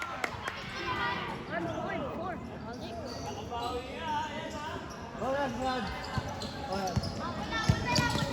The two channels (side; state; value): both; identical; correlation 1.00